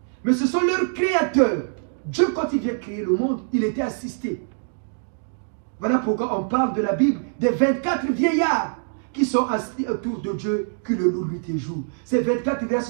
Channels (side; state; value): left; silent; digital silence